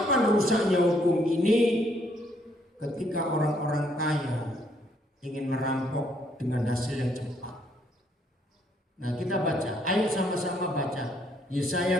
rusaknya hukum ini? Ketika orang-orang kaya ingin merampok dengan hasil yang cepat. Nah, kita baca, ayo sama-sama baca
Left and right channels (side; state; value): both; normal; correlation 0.69